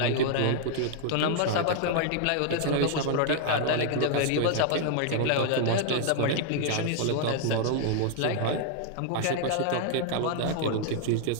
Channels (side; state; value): both; different; correlation 0.00